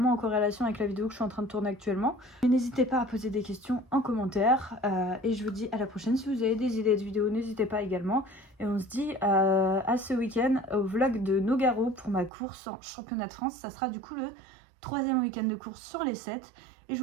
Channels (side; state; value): left; drops out; at 12.3 s